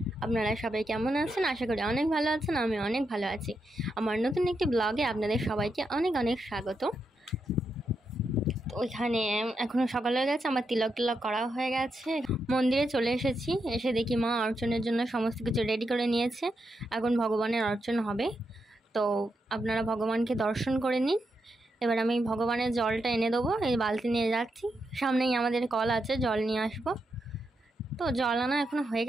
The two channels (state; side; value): normal; both; correlation 0.84